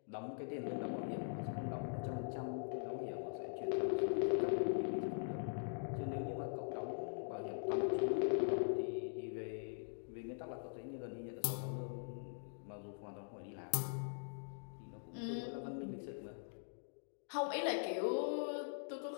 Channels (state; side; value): silent; right; digital silence